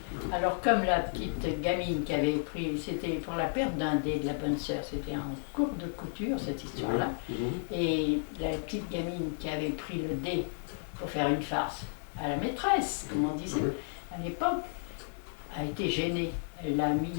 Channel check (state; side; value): silent; right; digital silence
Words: Alors, comme la petite gamine qui avait pris, c'était pour la perte d'un dé de la bonne sœur, c'était en cours de couture cette histoire-là. Et la petite gamine qui avait pris le dé pour faire une farce à la maîtresse, comme on disait à l'époque, a été gênée. Elle l'a mis